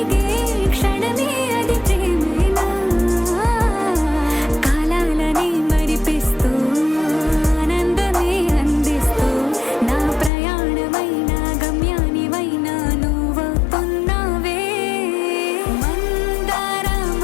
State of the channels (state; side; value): drops out; right; at 10.3 s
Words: క్షణమే అది ప్రేమేనా కాలాలని మరిపిస్తూ ఆనందమే అందిస్తూ నా ప్రయాణమైన గమ్యానివైనా నువ్వవుతున్నావే మందారా